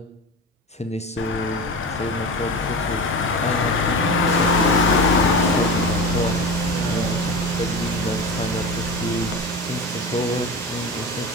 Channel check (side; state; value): both; normal; correlation 0.27